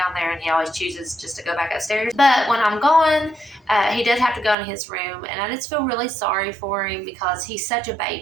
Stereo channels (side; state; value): left; drops out; at 4.5 s